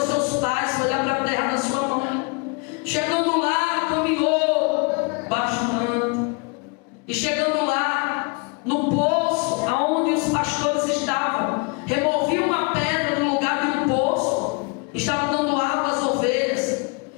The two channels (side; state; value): right; quieter; 32.1 dB